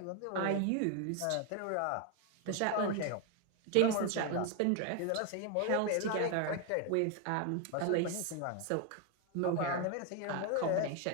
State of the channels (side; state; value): both; different; correlation 0.01